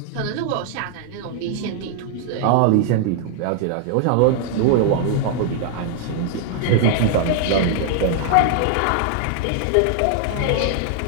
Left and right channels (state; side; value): different; both; correlation 0.00